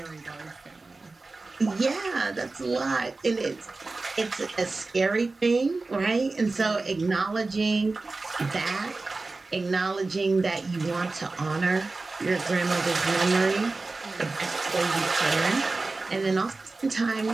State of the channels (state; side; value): quieter; left; 3.5 dB